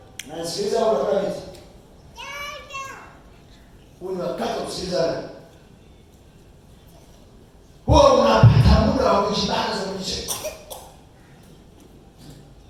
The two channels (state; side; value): identical; both; correlation 1.00